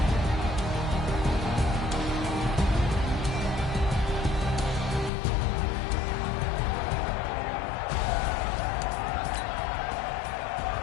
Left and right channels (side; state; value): right; drops out; at 5.1 s